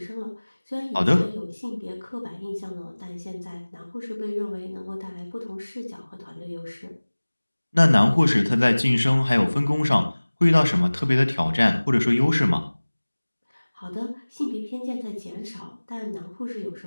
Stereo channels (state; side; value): inverted; both; correlation -1.00